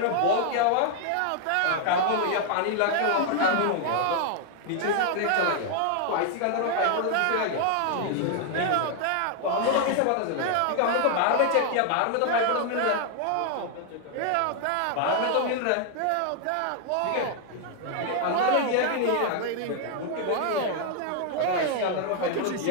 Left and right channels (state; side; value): different; both; correlation 0.00